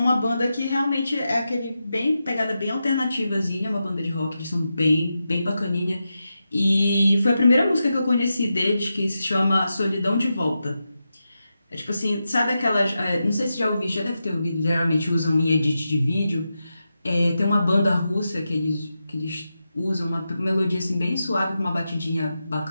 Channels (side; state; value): both; inverted; correlation -0.89